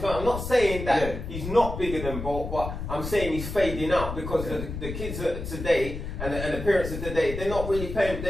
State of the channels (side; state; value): left; noise; rumble, 7 dB below the sound